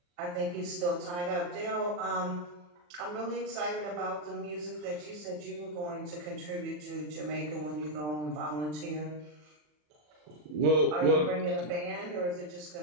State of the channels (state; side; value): late; left; 40 ms